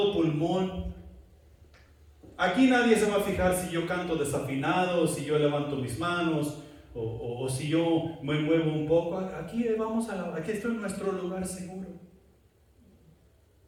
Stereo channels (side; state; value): both; identical; correlation 1.00